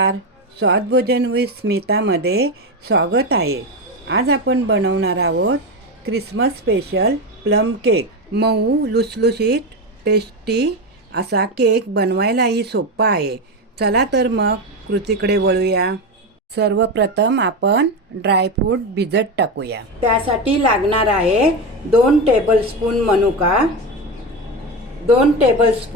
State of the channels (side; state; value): both; normal; correlation 0.16